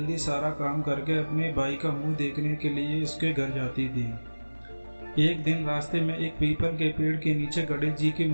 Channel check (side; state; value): both; inverted; correlation -1.00